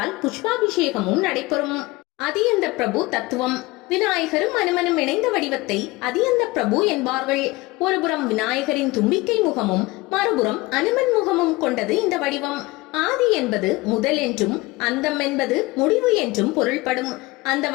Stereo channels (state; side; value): quieter; right; 21.5 dB